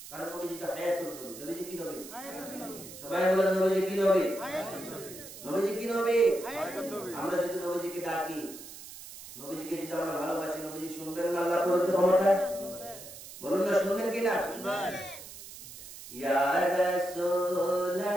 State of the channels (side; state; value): right; noise; hiss, 14 dB below the sound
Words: কারণ নবীজি তো হায়াতুল নবী। নবীজি কি নবী? হায়াতুল নবী। সবাই বলেন নবীজি কি নবী? হায়াতুল নবী। নবীজি কি নবী? হায়াতুল নবী। আমরা যদি নবীজিকে ডাকি, নবীজিকে যদি আমরা ভালোবাসি, নবীজি শুনবেন না আল্লাহর প্রদত্ত ক্ষমতা? বলুন না, শুনবেন কিনা? শুনবেন। ইয়া